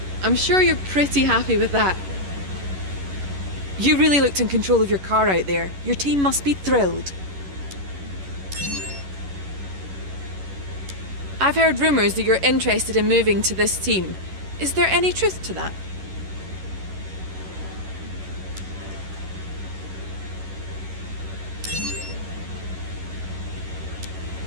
I'm sure you're pretty happy with that. You really looked in control of your car out there. Your team must be thrilled. I've heard rumours that you're interested in moving to this team. Is there any truth to that?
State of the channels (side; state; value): left; late; 11 ms